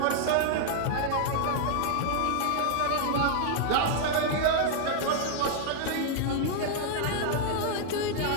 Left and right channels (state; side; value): different; both; correlation 0.00